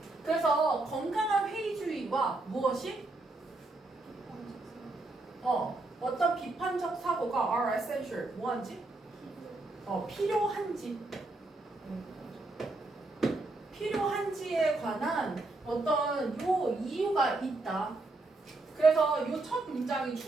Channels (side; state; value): left; quieter; 3.0 dB